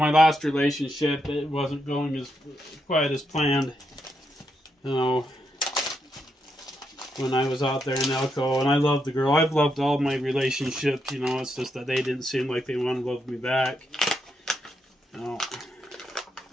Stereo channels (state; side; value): normal; both; correlation 0.81